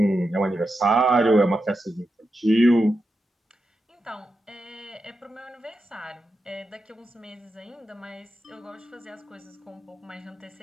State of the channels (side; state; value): both; normal; correlation 0.88